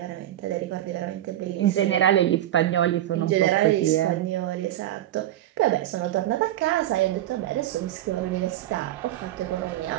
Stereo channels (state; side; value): quieter; left; 13.2 dB